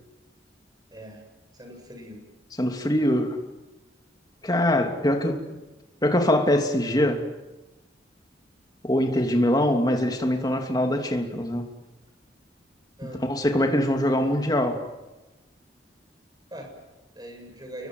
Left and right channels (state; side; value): normal; both; correlation 0.70